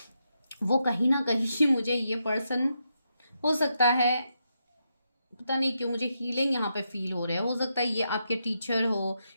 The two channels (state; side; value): inverted; both; correlation -0.83